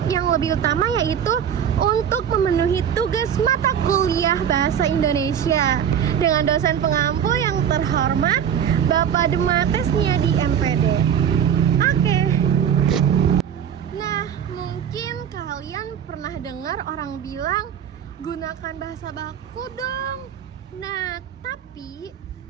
yang lebih utama yaitu untuk memenuhi tugas mata kuliah Bahasa Indonesia dengan dosen pengampu yang terhormat Bapak Dematesnya di NPD. Oke. Nah, mungkin kalian pernah dengar orang bilang gunakan bahasa baku dong. Nah, tapi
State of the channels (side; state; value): left; quieter; 8.7 dB